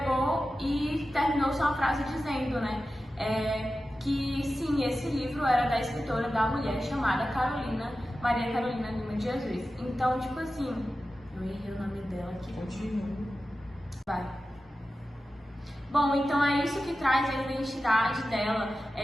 e terminou sua frase dizendo, né, que sim, esse livro era da escritora, da mulher chamada Maria Carolina Lima de Jesus. Então, tipo assim, eu errei o nome dela aqui. Continua. Vai. Bom, então é isso que traz a identidade dela,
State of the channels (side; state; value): both; normal; correlation 0.93